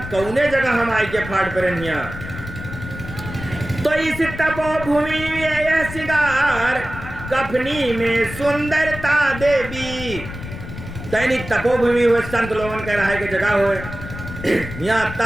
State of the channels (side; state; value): left; noise; rumble, 11 dB below the sound